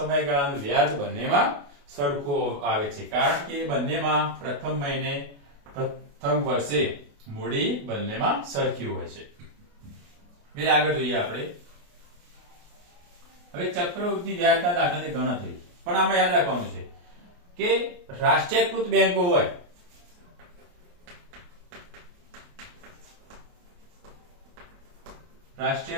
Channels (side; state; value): left; late; 28 ms